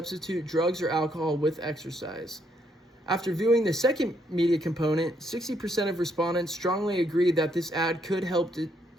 drugs or alcohol with exercise. After viewing the second media component, 60% of respondents strongly agreed that this ad could help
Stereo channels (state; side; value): normal; both; correlation 0.73